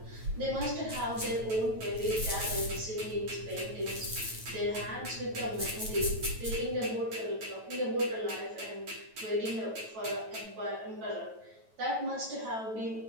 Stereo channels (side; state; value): left; late; 9.2 ms